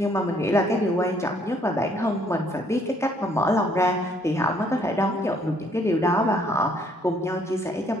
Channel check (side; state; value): both; normal; correlation 0.65